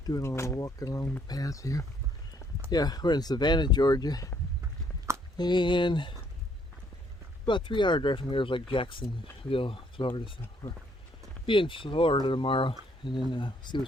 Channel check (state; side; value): normal; both; correlation 0.67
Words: doing a little walking along the path here. Yeah, we're in Savannah, Georgia, and about a 3-hour drive from here is like Jacksonville, Florida. So we're be in Florida tomorrow, and then see